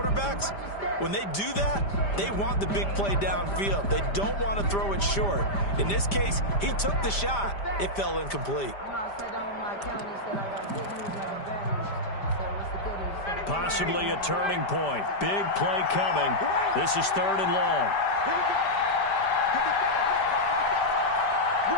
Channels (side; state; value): right; late; 5.0 ms